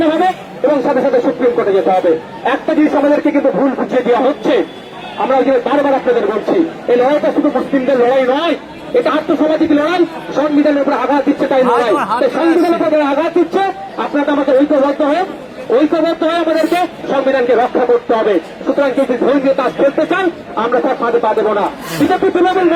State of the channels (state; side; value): identical; both; correlation 1.00